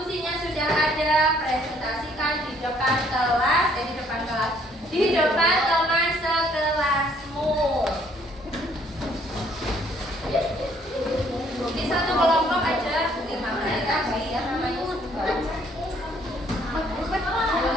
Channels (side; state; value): both; normal; correlation 0.64